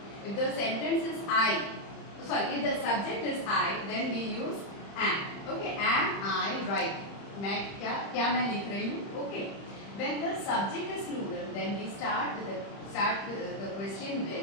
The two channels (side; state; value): right; late; 30 ms